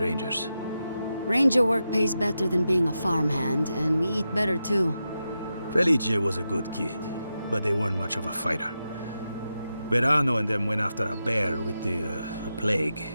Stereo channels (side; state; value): both; inverted; correlation -0.89